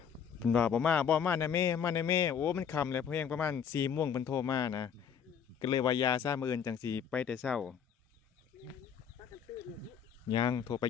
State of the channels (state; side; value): quieter; right; 7.6 dB